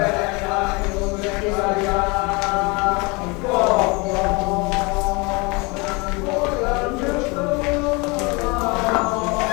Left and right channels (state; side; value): quieter; right; 27.7 dB